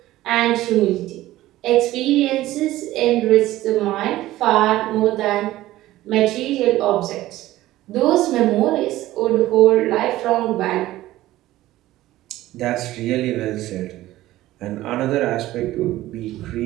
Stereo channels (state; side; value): quieter; left; 15.8 dB